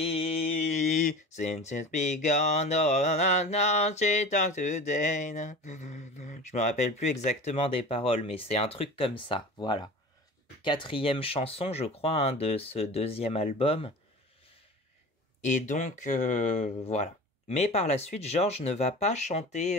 Since it's begun, now she talks today. Je me rappelle plus exactement des paroles, mais c'est un truc comme ça, voilà. 4e chanson, je crois, hein, de ce deuxième album. Et donc, voilà. Mais par la suite, George ne va pas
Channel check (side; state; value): both; normal; correlation 0.36